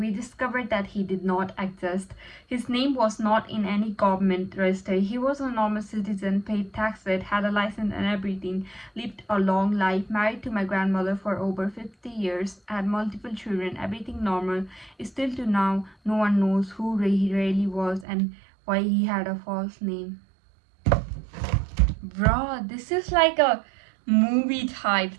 discovered that he did not exist. His name was not in any government register. He was a normal citizen, paid taxes, had a license and everything, lived a long life, married to my grandmother for over 50 years, had multiple children, everything normal. Still to now, no one knows who he really was and why he had a false name. Bro, this is like a movie type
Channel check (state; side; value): drops out; left; at 18.1 s